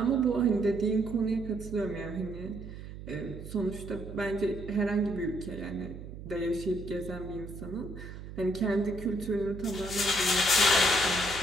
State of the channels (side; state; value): right; noise; hum, 11 dB below the sound